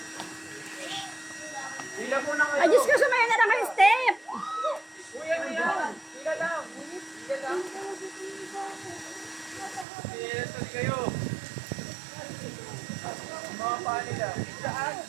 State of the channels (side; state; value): left; drops out; at 9.9 s